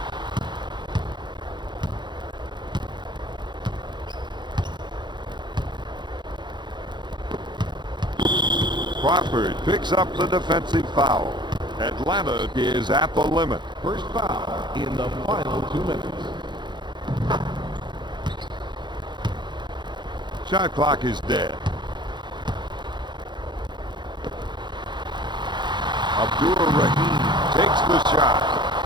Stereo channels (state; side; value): late; left; 0.22 ms